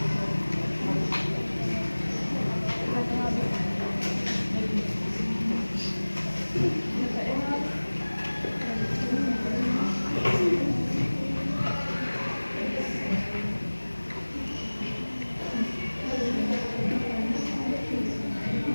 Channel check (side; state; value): both; inverted; correlation -1.00